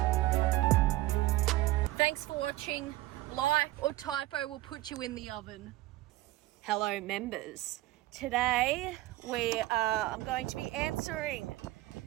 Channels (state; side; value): quieter; left; 17.1 dB